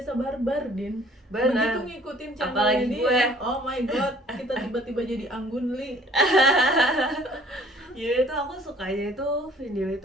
barbar, Din. Benar. Begitu ngikutin channelnya Apalagi dia, gue. oh my god, kita tiba-tiba jadi anggun li. Ya itu aku sukanya itu video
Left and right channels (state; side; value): normal; both; correlation 0.55